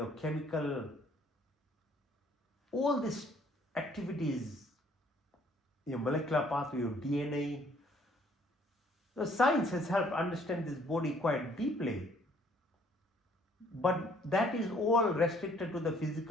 chemical, all these activities, your molecular pathway, your DNA. The science has helped understand this body quite deeply. But that is all restricted to the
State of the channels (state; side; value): normal; both; correlation 0.62